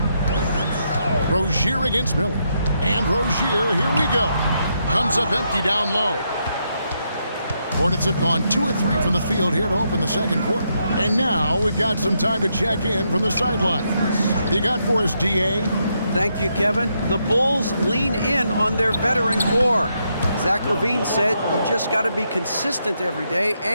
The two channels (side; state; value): both; inverted; correlation -0.79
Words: Rozier against Miller. And Rozier, here we go. Comes up empty down low. Hornets have gone 2 of 3 from the field here to open the second quarter. And now we've got some time to check in from the sidelines. You got for us, DA? Thank you, Kevin. The Bulls lean in on their veteran core. Zach LaVine said you just got to be consistent every day